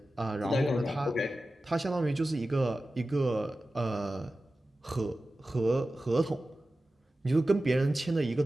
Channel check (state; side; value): normal; both; correlation 0.95